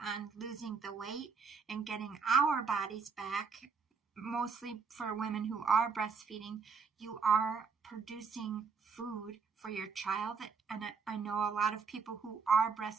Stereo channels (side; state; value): left; quieter; 5.4 dB